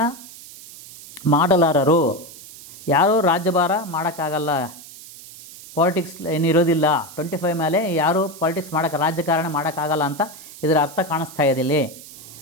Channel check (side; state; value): right; noise; hiss, 17 dB below the sound